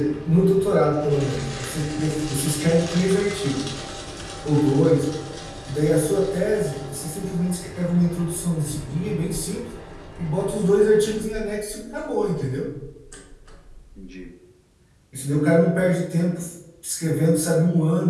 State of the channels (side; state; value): both; identical; correlation 1.00